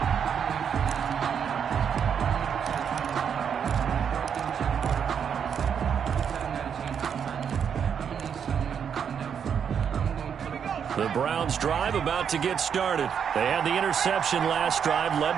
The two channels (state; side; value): quieter; left; 7.6 dB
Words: The Browns drive about to get started. They had the interception last drive, led